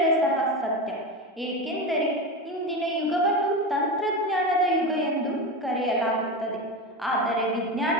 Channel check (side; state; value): both; normal; correlation 0.21